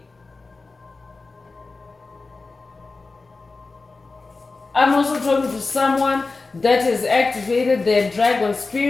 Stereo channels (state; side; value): quieter; right; 3.8 dB